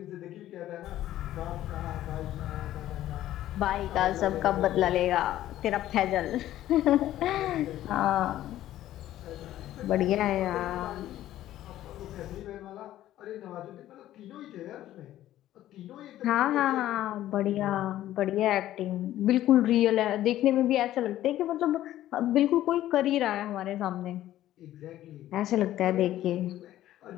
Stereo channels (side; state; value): right; quieter; 13.5 dB